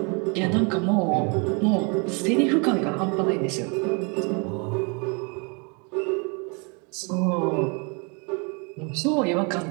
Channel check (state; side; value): quieter; left; 33.7 dB